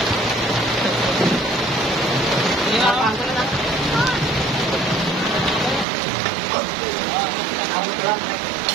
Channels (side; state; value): left; drops out; at 5.9 s